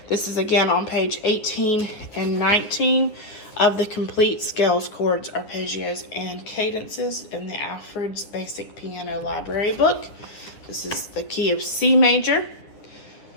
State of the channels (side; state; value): right; late; 9.8 ms